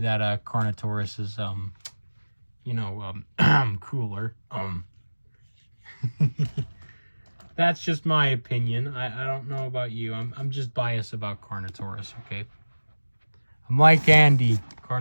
Carnotaurus is, cooler. That's just my opinion. I don't know about you. I'm just biased about Carnotaurus, okay? I'm like Andy.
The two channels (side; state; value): both; inverted; correlation -1.00